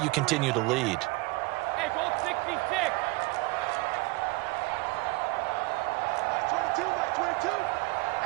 continue to lead.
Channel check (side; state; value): left; quieter; 24.4 dB